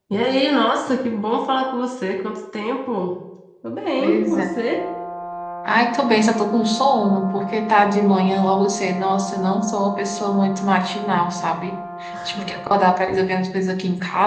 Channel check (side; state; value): both; identical; correlation 1.00